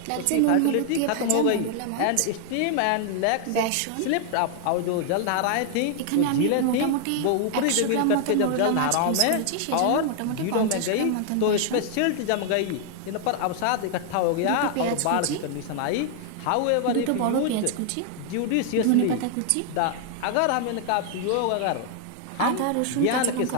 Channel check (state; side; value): different; both; correlation 0.00